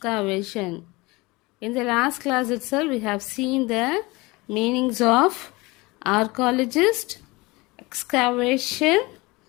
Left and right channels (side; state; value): right; quieter; 23.2 dB